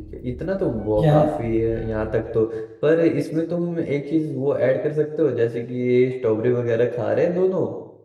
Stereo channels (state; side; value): identical; both; correlation 1.00